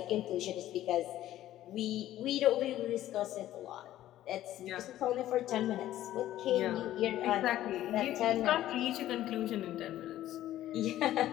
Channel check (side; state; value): right; quieter; 13.5 dB